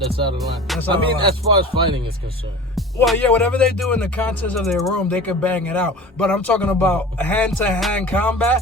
out of line. That's out of line. As far as fighting is concerned. Well, yeah, whatever they do in the contents of their room, they can bang it out. But I'm talking about hand-to-hand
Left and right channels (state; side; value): normal; both; correlation 0.38